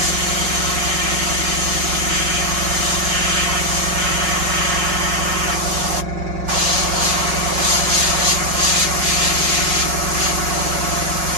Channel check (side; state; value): left; late; 5.5 ms